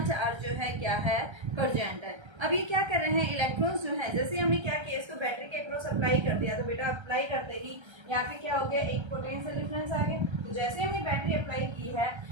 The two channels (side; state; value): left; late; 1.3 ms